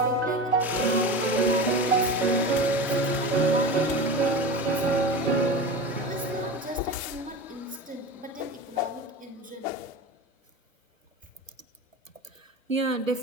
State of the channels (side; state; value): both; normal; correlation 0.28